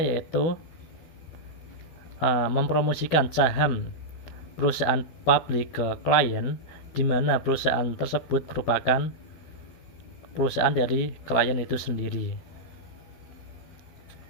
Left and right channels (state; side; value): late; right; 13 ms